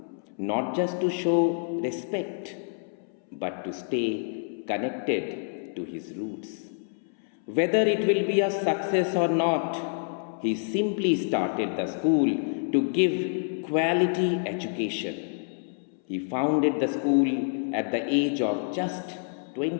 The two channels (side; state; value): right; silent; 60 dB below the other